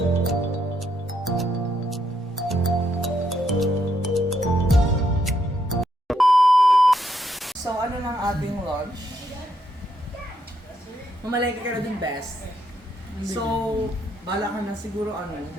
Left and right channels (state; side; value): normal; both; correlation 0.76